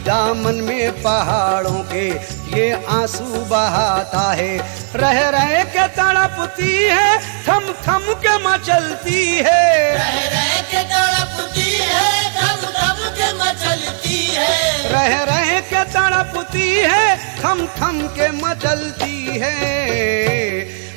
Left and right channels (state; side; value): silent; left; 69 dB below the other